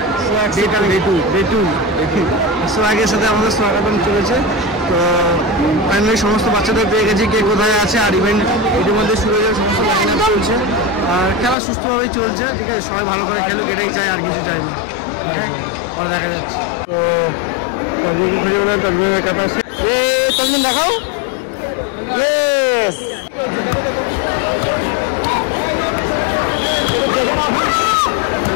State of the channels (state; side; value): drops out; right; at 11.6 s